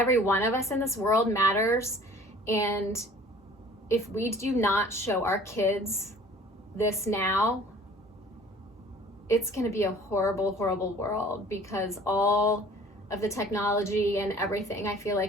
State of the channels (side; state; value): both; normal; correlation 0.49